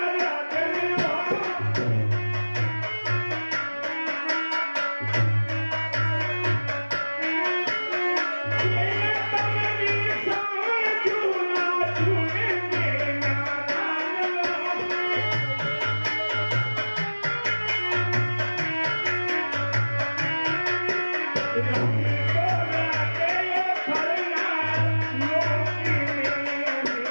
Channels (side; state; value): both; inverted; correlation -1.00